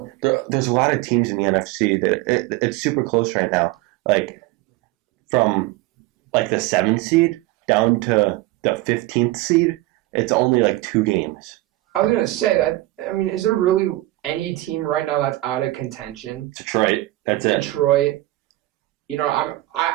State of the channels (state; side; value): quieter; left; 18.3 dB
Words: a lot of teams in the NFC that it's super close right now. Like, from, the 7th seed down to the 15th seed, it's only, 2 games. I was going to say that, I mean, is there really any team right now that's out of contention? Detroit. That's it. Detroit. You know,